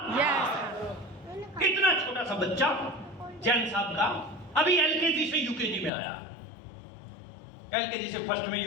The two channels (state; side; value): drops out; right; at 5.9 s